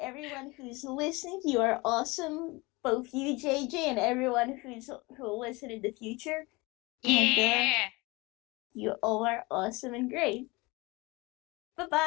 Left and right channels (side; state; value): right; quieter; 24.2 dB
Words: everyone who's listening, you are awesome. Both you, JJ, and everyone who'll listen in the future, and Yeah. you all are awesome and great. Bye